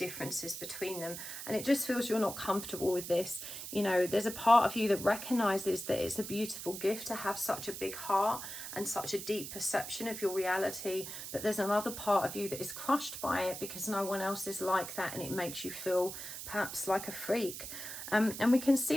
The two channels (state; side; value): noise; right; hiss, 8 dB below the sound